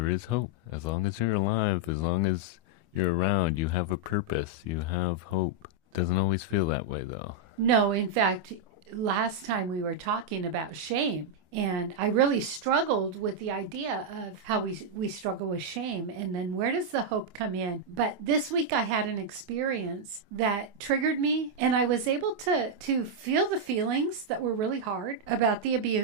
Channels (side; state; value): left; late; 25 ms